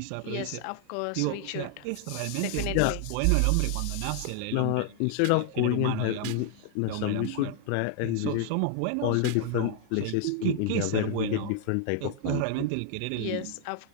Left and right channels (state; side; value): different; both; correlation 0.00